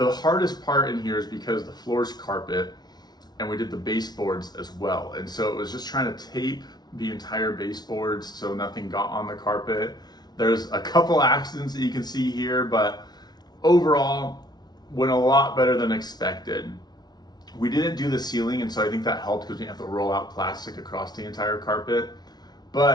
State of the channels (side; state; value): right; late; 0.19 ms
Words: hardest part in here is because the floor's carpet and we did the baseboards as well. And so it was just trying to tape the entire baseboards so nothing got on the carpet. There's a couple accidents that you can see here, but overall went a lot better than expected. We didn't do the ceiling, and so I think that helped because we have to roll out plastic across the entire carpet.